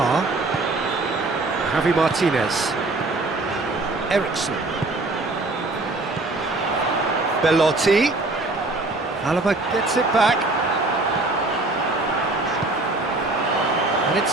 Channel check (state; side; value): quieter; left; 3.1 dB